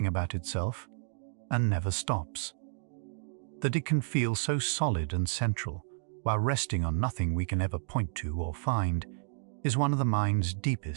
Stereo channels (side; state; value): left; silent; digital silence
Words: about itself and never stops. That it can feel so solid and central while resting on nothing we can ever point to or find is one of the mind's